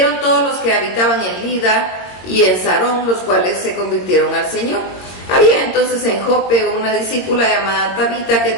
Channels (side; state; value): right; late; 22 ms